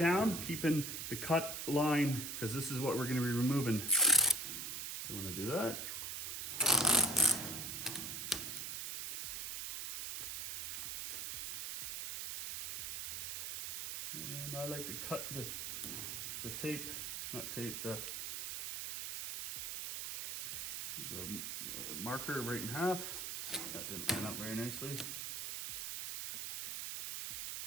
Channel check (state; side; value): noise; right; hiss, 4 dB below the sound